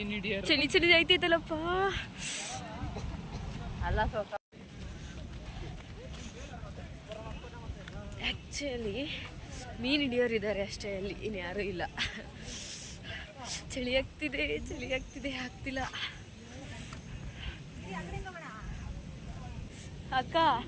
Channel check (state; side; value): identical; both; correlation 1.00